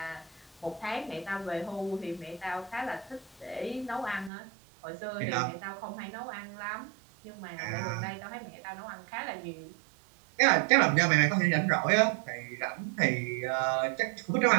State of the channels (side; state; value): left; drops out; at 4.3 s